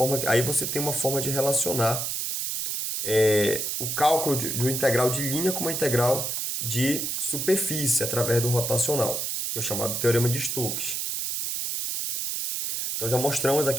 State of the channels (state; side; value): noise; right; hiss, 2 dB below the sound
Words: Aí você tem uma forma de relacionar o cálculo do integral de linha com uma integral de superfície através do rotacional, que é o chamado teorema de Stokes. Então já mostramos